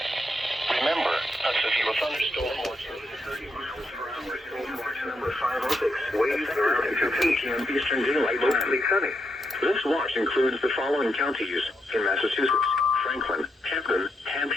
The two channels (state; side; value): normal; both; correlation 0.82